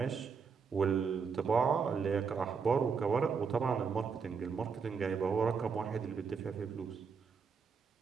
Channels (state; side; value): quieter; left; 5.8 dB